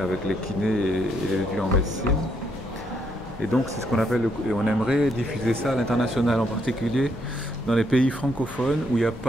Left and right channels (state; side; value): normal; both; correlation 0.74